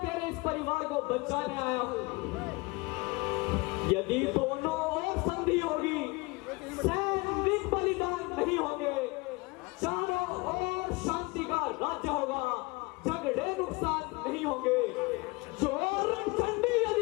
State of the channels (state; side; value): quieter; right; 25.4 dB